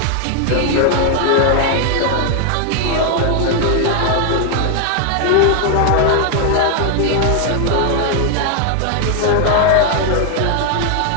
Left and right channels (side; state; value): both; different; correlation 0.00